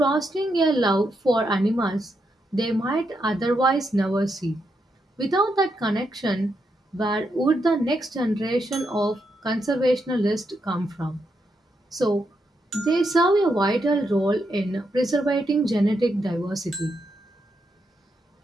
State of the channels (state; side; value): normal; both; correlation 0.82